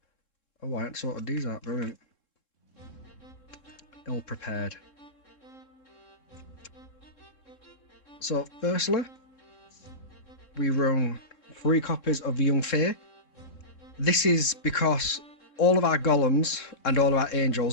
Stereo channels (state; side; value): late; right; 3.7 ms